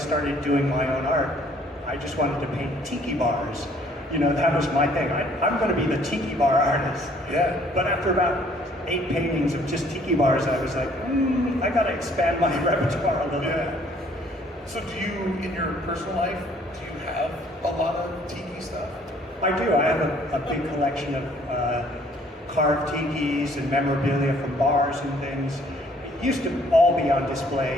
doing my own art, I just wanted to paint Tiki bars. You know, that was my thing. I'm going to be the Tiki bar artist. Yeah. But after about 8 paintings of just Tiki bars, I was like, I got to expand my repertoire a little bit. So do you, in your personal life, do you have a lot of Tiki stuff? I do. I have a big collection of carved Tikis and memorabilia from bars and things. It used to all be on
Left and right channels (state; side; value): normal; both; correlation 0.60